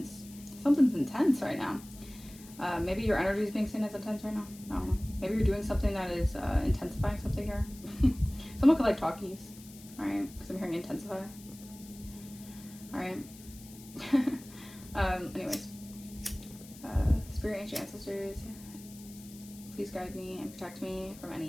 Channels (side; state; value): left; noise; hiss, 19 dB below the sound